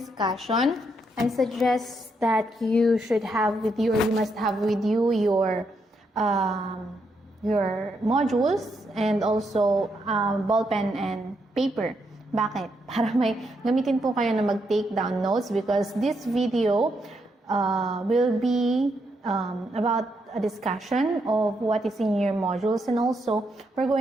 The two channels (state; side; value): normal; both; correlation 0.79